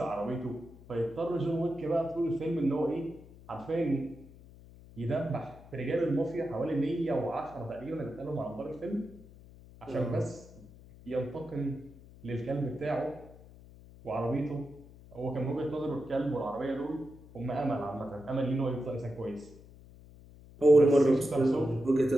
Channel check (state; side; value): noise; left; hum, 20 dB below the sound